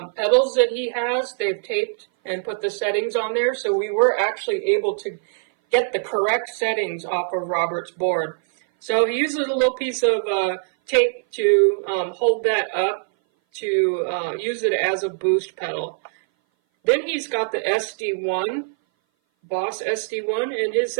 pedals that he has, they've taped and put the settings on there, so we were actually able to get the correct settings off of Robert's board. So he uses a little piece of tape to hold that up to use it as a boost pedal. Then he's got the SD1, Boss SD1, and his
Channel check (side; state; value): left; silent; 59 dB below the other